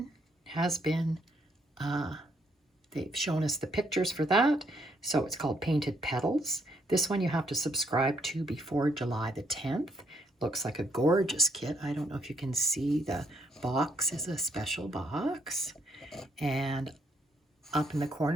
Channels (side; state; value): both; normal; correlation 0.72